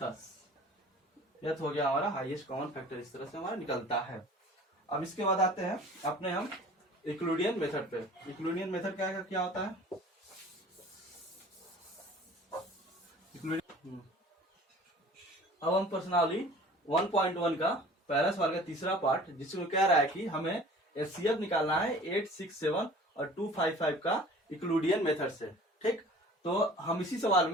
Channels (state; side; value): normal; both; correlation 0.46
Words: 10। यह हो गया हमारा हाईएस्ट कॉमन फैक्टर। इस तरह से हमारा निकलता है। अब इसके बाद आते हैं अपने हम यूक्लिडियन मेथड पे। यूक्लिडियन मेथड क्या होता है, अब हम पर्सनली 1.1 का पहला सवाल का तीसरा पार्ट, जिसमें कह रहा है कि हमें HCF निकालना है 867 और 255 का यूक्लिडियन मेथड से। ठीक, तो हम इसी सवाल